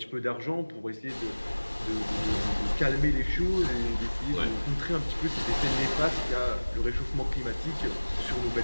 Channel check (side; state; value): both; inverted; correlation -1.00